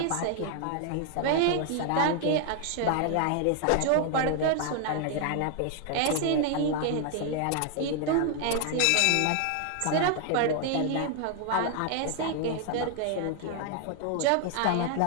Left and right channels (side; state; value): both; different; correlation 0.00